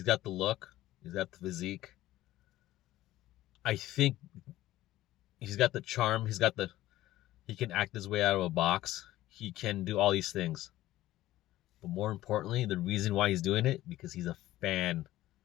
got the look, he's got the physique. I think he's got the charm, he can act his way out of a box. He can do all these things. But more importantly, the reason why he's doing it, because he's a fan.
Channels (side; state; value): right; quieter; 15.4 dB